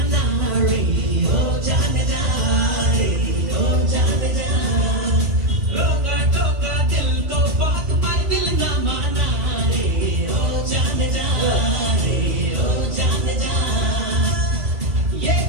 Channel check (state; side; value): late; left; 1.9 ms